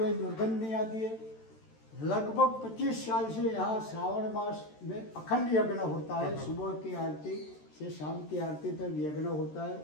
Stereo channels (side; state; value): right; late; 13 ms